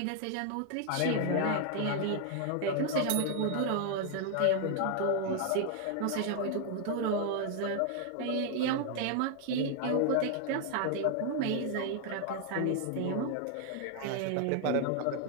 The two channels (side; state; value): both; different; correlation 0.00